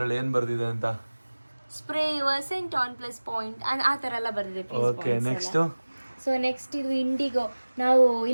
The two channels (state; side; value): inverted; both; correlation -1.00